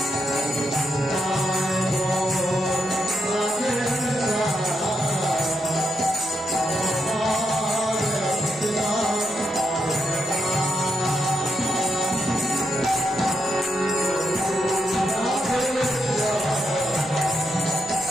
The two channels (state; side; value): normal; both; correlation 0.81